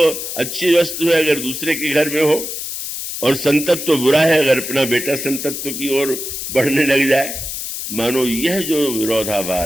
अच्छी वस्तु है अगर दूसरे के घर में हो, और संतत्व बुरा है अगर अपना बेटा संतत्व की ओर बढ़ने लग जाए। मानो यह जो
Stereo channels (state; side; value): noise; left; hiss, 6 dB below the sound